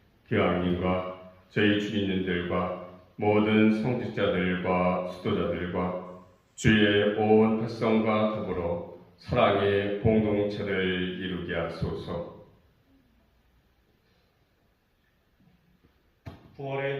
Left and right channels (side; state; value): both; identical; correlation 1.00